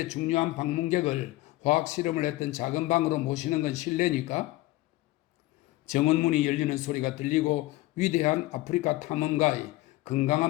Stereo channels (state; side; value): quieter; right; 18.3 dB